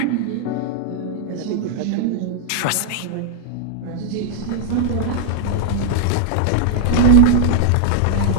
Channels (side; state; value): both; different; correlation -0.01